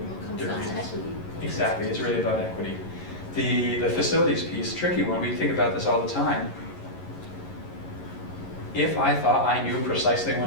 different reasons. Exactly, it's really about equity. The facilities piece, tricky one, we think about this all the time. If I thought I knew precisely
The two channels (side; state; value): right; late; 11 ms